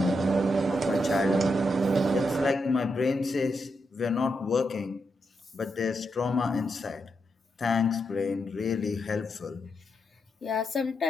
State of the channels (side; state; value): both; normal; correlation 0.83